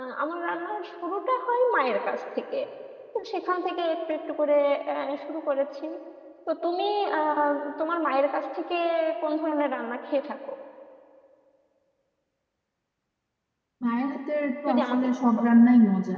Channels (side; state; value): both; identical; correlation 1.00